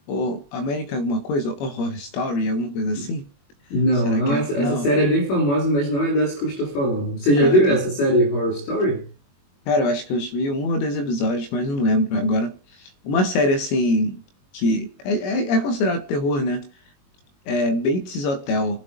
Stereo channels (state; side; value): late; right; 21 ms